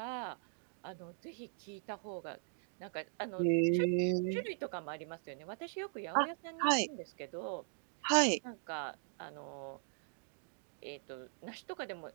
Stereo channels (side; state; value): left; silent; digital silence